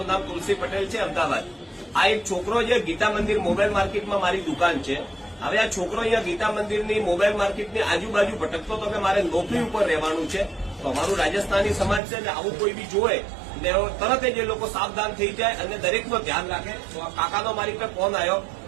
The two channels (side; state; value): left; drops out; at 12.0 s